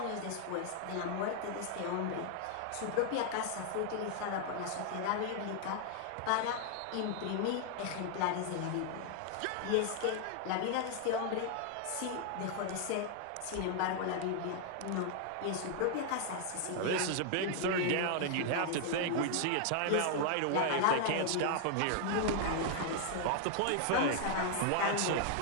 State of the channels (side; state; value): both; different; correlation 0.00